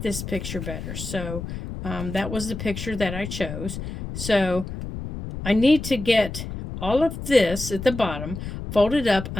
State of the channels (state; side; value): noise; left; rumble, 8 dB below the sound